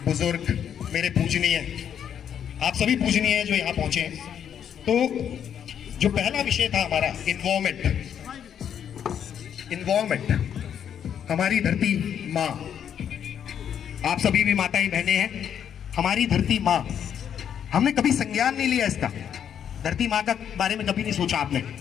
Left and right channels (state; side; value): quieter; right; 8.8 dB